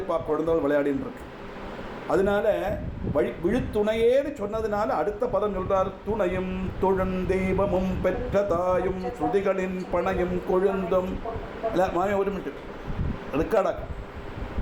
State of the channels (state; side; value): identical; both; correlation 1.00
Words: குழந்தைகள் விளையாடின்னு இருக்கு. அதனால விழுத்துணையேன்னு சொன்னதுனால அடுத்த பதம் சொல்றார். துணையும் தொழுந்தெய்வமும் பெற்ற தாயும் ஸ்ருதிகளின் பணையும் கொழுந்தும். மாமி ஒரு மினிட் ரெக்கார்டாக.